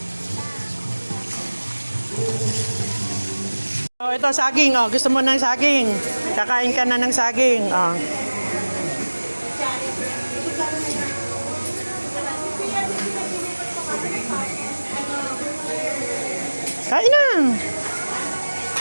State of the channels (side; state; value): both; inverted; correlation -1.00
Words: Oh, ito saging. Oh, gusto mo ng saging? Kakain ka na ng saging. Oh. Kain na.